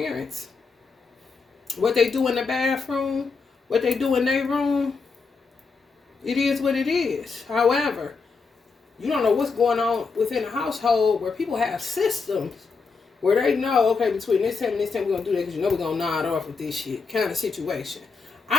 What they do in the bathroom, what they do in their room, it is what it is. However, you don't know what's going on within a household where people have systems where they know, okay, between this time and this time we're going to do that because you know we're going to nod off with this shit kind of situation.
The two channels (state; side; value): quieter; right; 4.8 dB